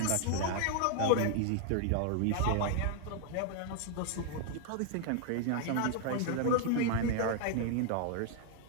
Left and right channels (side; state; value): both; different; correlation 0.00